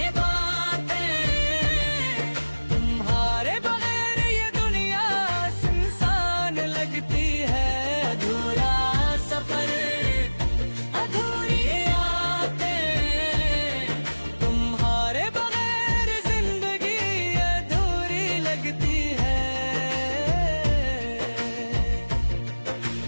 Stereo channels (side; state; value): both; inverted; correlation -1.00